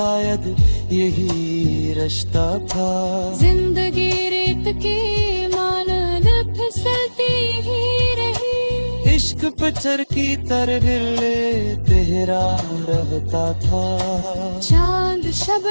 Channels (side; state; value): both; inverted; correlation -1.00